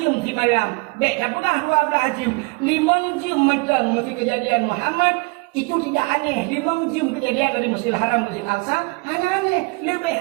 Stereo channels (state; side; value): quieter; left; 29.2 dB